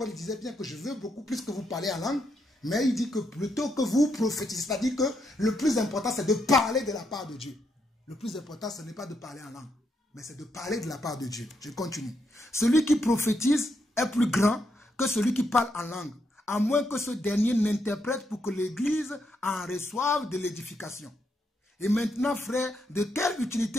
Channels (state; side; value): normal; both; correlation 0.79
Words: disait bien que je veux beaucoup plus que vous parlez en langue, mais il dit que plutôt que vous prophétisez, c'est-à-dire que le plus important c'est de parler de la part de Dieu. Le plus important ce n'est pas de parler en langue, mais c'est de parler de la part de Dieu. Je continue. Celui qui prophétise est plus grand que celui qui parle en langue, à moins que ce dernier n'interprète pour que l'Église en reçoive de l'édification. Et maintenant, frères, de quelle